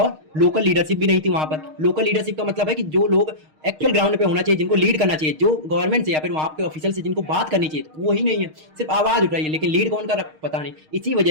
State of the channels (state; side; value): late; left; 6.5 ms